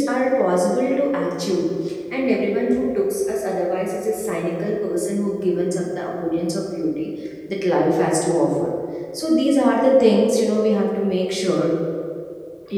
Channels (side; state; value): both; identical; correlation 1.00